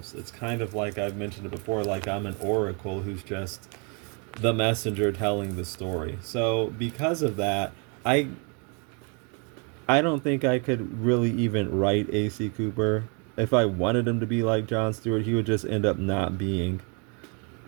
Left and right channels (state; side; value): quieter; left; 35.1 dB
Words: It's kind of like I've mentioned it before, like I'm an oracle who's just the messenger telling the story. So because of that, I don't think I could really even write A.C. Cooper. If I wanted him to be like Jon Stewart, he would just end up not being.